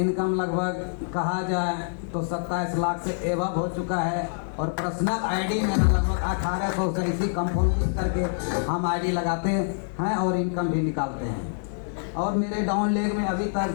लगभग कहा जाए तो 27 लाख से एवब हो चुका है। और पर्सनल आईडी में लगभग 1800 से इसी कंपाउंडिंग करके हम आईडी लगाते हैं और इनकम भी निकालते हैं। और मेरे डाउन लेग में अभी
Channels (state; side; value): silent; right; digital silence